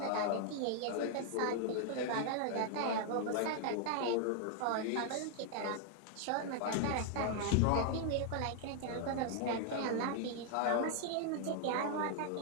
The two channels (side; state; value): both; different; correlation 0.00